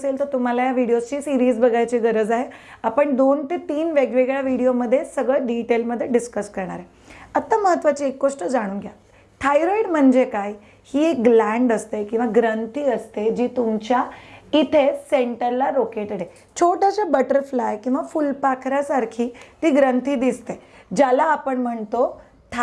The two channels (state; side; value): identical; both; correlation 1.00